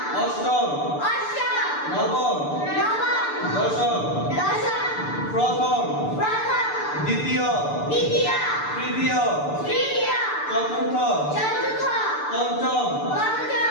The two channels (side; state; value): right; late; 6.8 ms